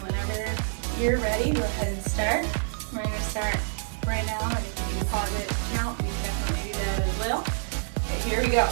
whenever you're ready, go ahead and start. We're going to start right now, and if you can pause it count, you can definitely do that as well. Okay, here we go.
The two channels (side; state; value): left; silent; 60 dB below the other